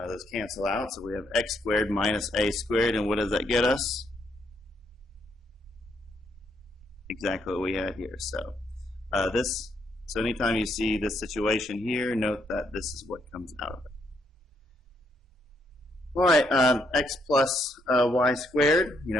Those cancel out, so we have x squared minus a squared, and what does that get us? Exactly what we had here. So so anytime you see this situation here, note that this is what comes out of it. All right, x plus y squared,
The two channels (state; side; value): normal; both; correlation 0.74